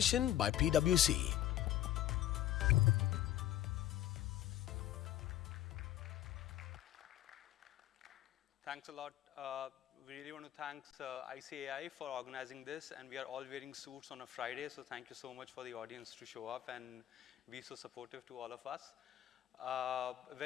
by PwC. Thanks a lot. We really want to thank ICAI for organizing this, and we are all wearing suits on a Friday, so thank you so much for the audience to show up and be so supportive to all of us.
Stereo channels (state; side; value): quieter; right; 12.7 dB